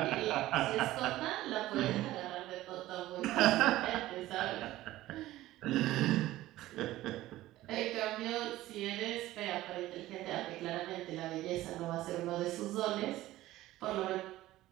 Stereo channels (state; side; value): quieter; left; 16.0 dB